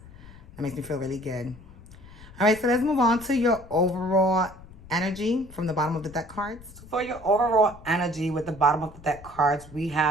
That makes me feel really good. All right, so let's move on to your overall energy from the bottom of the deck cards. So for your overall energy with the bottom of the deck cards, we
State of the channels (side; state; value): left; noise; rumble, 19 dB below the sound